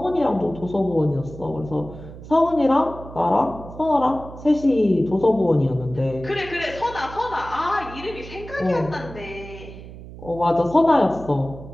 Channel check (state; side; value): noise; right; hum, 15 dB below the sound